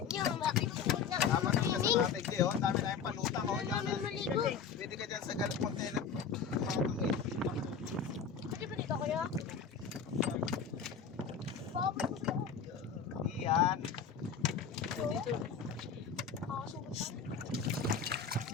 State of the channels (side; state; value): right; quieter; 6.4 dB